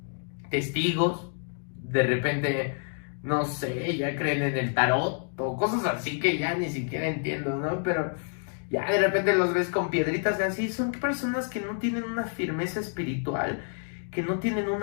testigos, de repente, no sé, ya creen en el tarot, o cosas así que ya ni siquiera entiendo, ¿no? Pero ya de repente los ves con piedritas de así. Son personas que no tienen una firmeza espiritual, que no tienen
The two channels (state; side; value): silent; right; 59 dB below the other